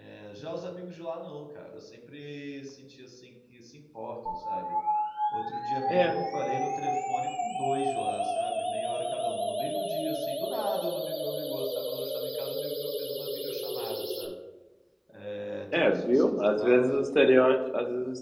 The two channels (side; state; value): both; identical; correlation 1.00